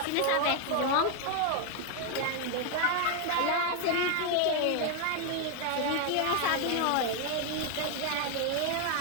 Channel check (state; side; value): different; both; correlation 0.01